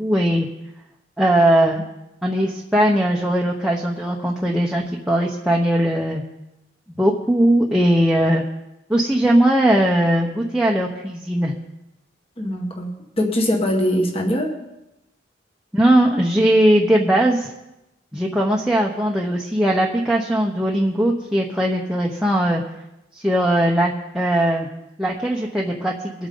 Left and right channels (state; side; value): normal; both; correlation 0.85